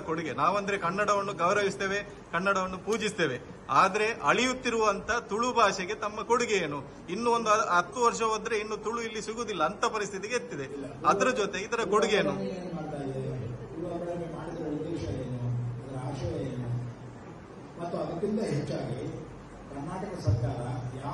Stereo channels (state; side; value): identical; both; correlation 1.00